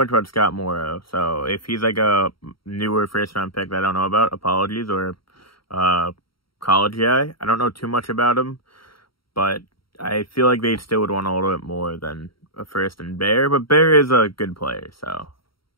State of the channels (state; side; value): late; right; 0.74 ms